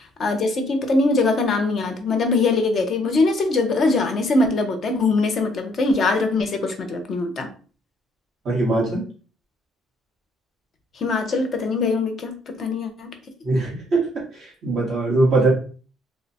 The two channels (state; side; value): normal; both; correlation 0.67